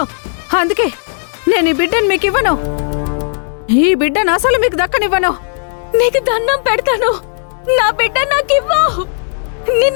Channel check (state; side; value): silent; right; digital silence